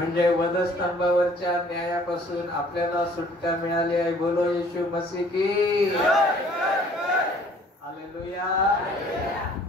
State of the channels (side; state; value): both; normal; correlation 0.56